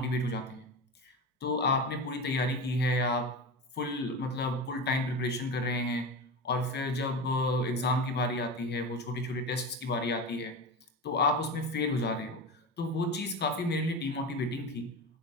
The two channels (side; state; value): both; normal; correlation 0.25